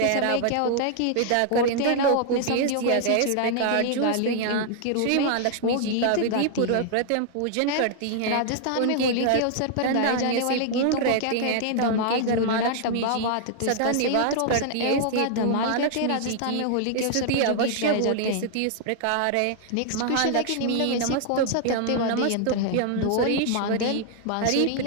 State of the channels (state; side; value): different; both; correlation -0.01